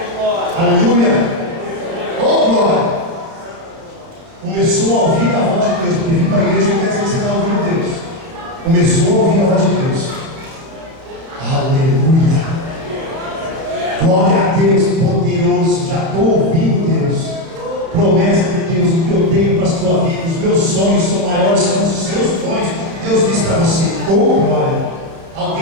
Aleluia! Oh, glória! Começou a ouvir a voz de Deus, porque vir para a igreja não quer dizer que você está ouvindo Deus. Começou a ouvir a voz de Deus. Aleluia! Glória a Deus, poderoso. Já estou ouvindo Deus. Promessa de Deus, o que eu tenho para a sua vida. Os meus sonhos são maiores que os seus sonhos. Deus diz para você: oh glória!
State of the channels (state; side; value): late; left; 31 ms